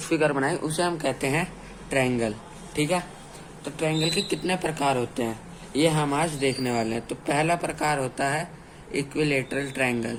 फिगर बनाई उसे हम कहते हैं ट्रायंगल। ठीक है। तो ट्रायंगल के कितने प्रकार होते हैं ये हम आज देखने वाले हैं। तो पहला प्रकार होता है equilateral triangle.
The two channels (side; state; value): both; identical; correlation 1.00